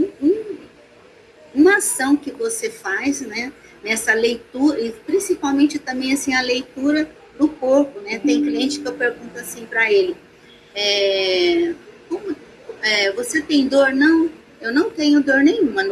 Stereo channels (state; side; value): identical; both; correlation 1.00